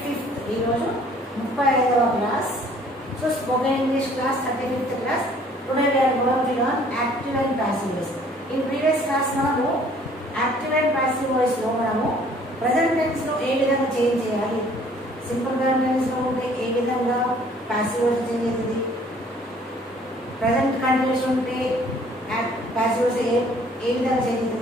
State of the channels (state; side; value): normal; both; correlation 0.57